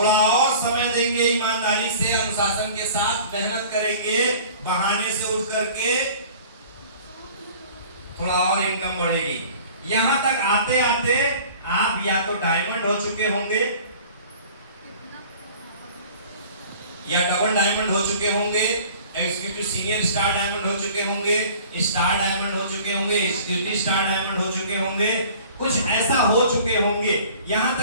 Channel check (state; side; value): inverted; both; correlation -0.47